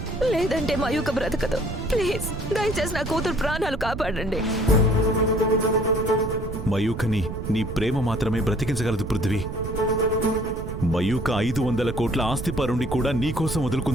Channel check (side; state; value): right; noise; rumble, 7 dB below the sound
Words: లేదంటే మయూక బ్రతకదు. ప్లీజ్, దయచేసి నా కూతురు ప్రాణాలు కాపాడండి. మయూకని నీ ప్రేమ మాత్రమే బ్రతికించగలదు పృథ్వీ. మయూక 500 కోట్ల ఆస్తి పరుండి కూడా నీకోసం